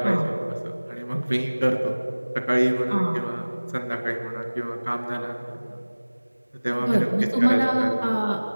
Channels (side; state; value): both; inverted; correlation -1.00